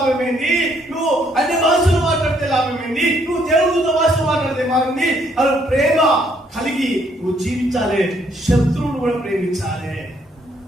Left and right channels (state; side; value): normal; both; correlation 0.69